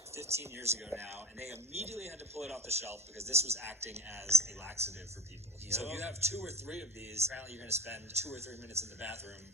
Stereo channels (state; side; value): normal; both; correlation 0.31